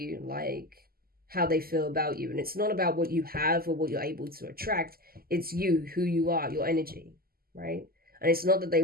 like, how they feel about you. And it's not about what you have or what you're able to attract. It's you, who you are, your energy, right? And it's not that they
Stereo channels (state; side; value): late; left; 0.43 ms